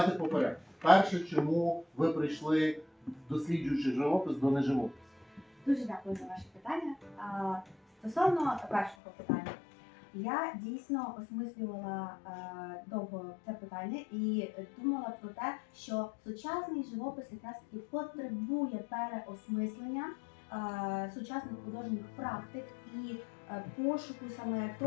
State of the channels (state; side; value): drops out; right; at 9.0 s